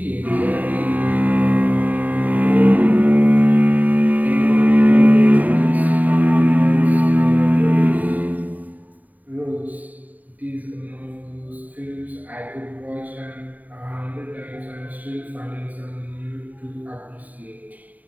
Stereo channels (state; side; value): late; left; 0.077 ms